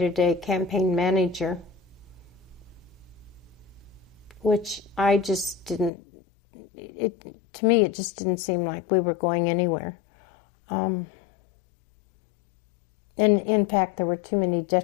campaign manager, which I just didn't, to me it just didn't seem like we were going anywhere. And in fact, there were too many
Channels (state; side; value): drops out; right; at 5.9 s